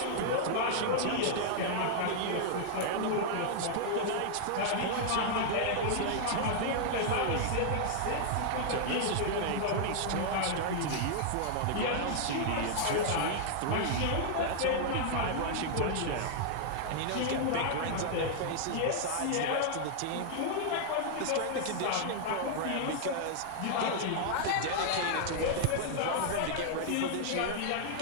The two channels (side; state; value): both; different; correlation -0.01